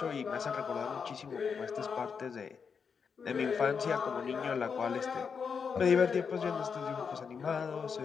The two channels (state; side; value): quieter; right; 6.1 dB